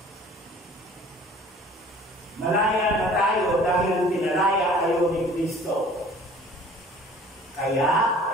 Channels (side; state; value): both; normal; correlation 0.49